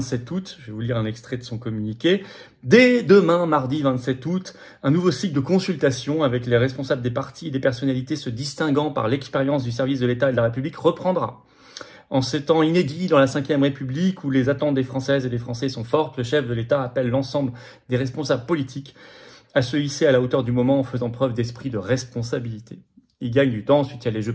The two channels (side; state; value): both; identical; correlation 1.00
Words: août. Je vais vous lire un extrait de son communiqué. Dès demain, mardi 27 août, un nouveau cycle de consultation avec les responsables des partis et des personnalités se distinguant par l'expérience du service de l'État et de la République reprendra. En ces temps inédits dans la Ve République où les attentes des Françaises et des Français sont fortes, le chef de l'État appelle l'ensemble des responsables politiques à se hisser à la hauteur du moment en faisant preuve d'esprit de responsabilité. Il gagne du temps, ensuite il y a les